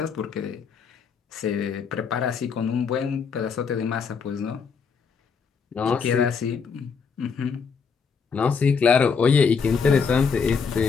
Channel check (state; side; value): quieter; right; 5.8 dB